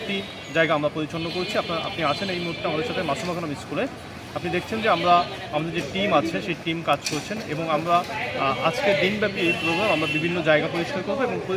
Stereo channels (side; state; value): both; identical; correlation 1.00